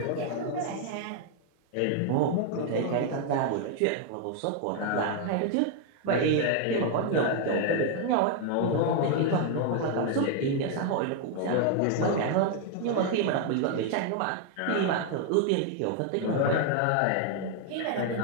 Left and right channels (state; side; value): different; both; correlation 0.00